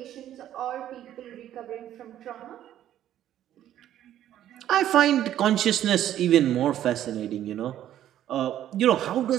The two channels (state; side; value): quieter; left; 11.8 dB